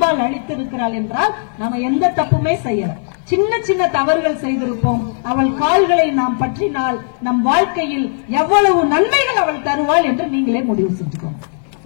அளித்திருக்கிறாள் என்றால் நாம எந்த தப்புமே செய்யல. சின்ன சின்ன தவறுகள் செய்திருப்போம். அவள் கால்களை நாம் பற்றினால் நம் வாழ்க்கையில் எவ்வளவு நன்மைகள் அவள் தருவாள் என்று நீங்களே முடிவு செஞ்சுக்கோங்க.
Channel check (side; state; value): right; silent; 64 dB below the other